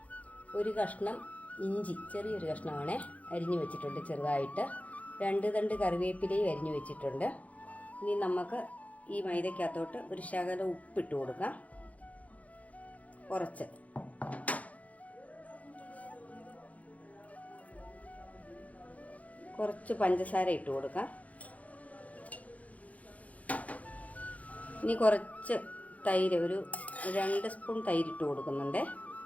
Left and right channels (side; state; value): right; late; 0.069 ms